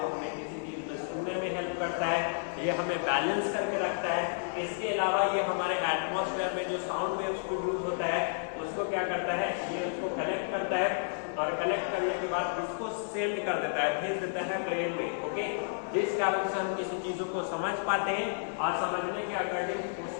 हमें किसी चीज में सुनने में हेल्प करता है, ये हमें बैलेंस करके रखता है। इसके अलावा ये हमारे एटमॉस्फेयर में जो साउंड वेव्स प्रोड्यूस होता है उसको क्या करता है, ये उसको कलेक्ट करता है और कलेक्ट करने के बाद इसको सेंड कर देता है, भेज देता है ब्रेन में, ओके। जिस कारण से हम किसी चीजों को समझ पाते हैं और समझने के अकॉर्डिंग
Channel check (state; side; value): silent; right; 57 dB below the other